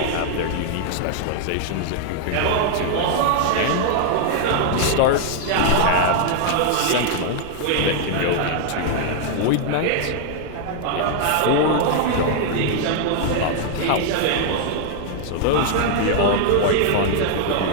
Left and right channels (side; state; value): both; different; correlation 0.00